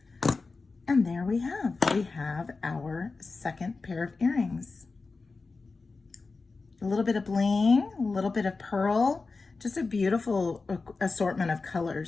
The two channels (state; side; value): quieter; right; 4.0 dB